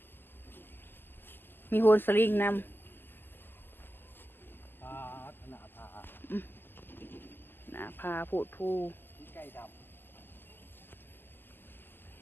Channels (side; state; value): right; late; 0.096 ms